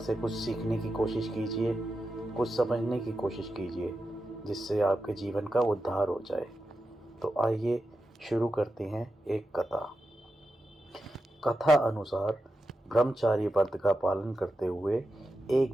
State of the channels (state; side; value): normal; both; correlation 0.89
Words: कुछ सीखने की कोशिश कीजिए, कुछ समझने की कोशिश कीजिए, जिससे आपके जीवन का उद्धार हो जाए। तो आइए शुरू करते हैं एक कथा। कथा अनुसार ब्रह्मचारी व्रत का पालन करते हुए